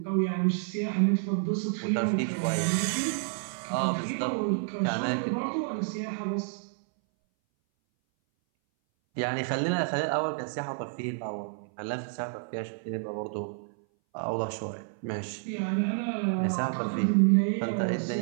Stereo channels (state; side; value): silent; left; 58 dB below the other